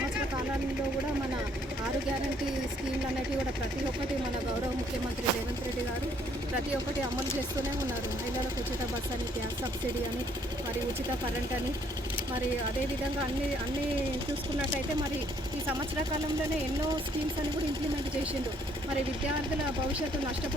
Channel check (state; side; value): normal; both; correlation 0.65